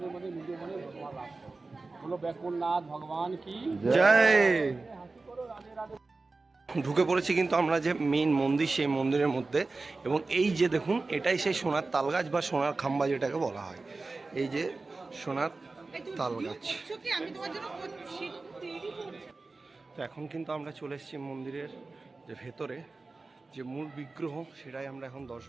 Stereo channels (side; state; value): left; quieter; 3.6 dB